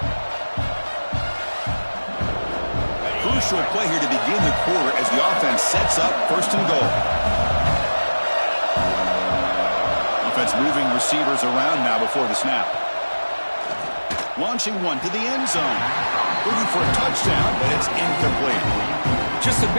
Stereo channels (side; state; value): both; inverted; correlation -1.00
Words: Crucial play here to begin the quarter as the offense sets up 1st and goal. Offense moving receivers around now before the snap. Launching one to the end zone. Looking for a touchdown, but it's incomplete. Just a